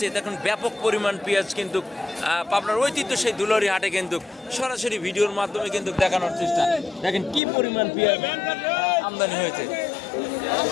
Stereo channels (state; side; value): drops out; right; at 7.4 s